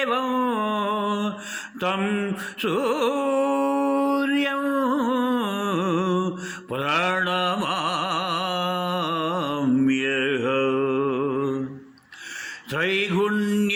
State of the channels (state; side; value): identical; both; correlation 1.00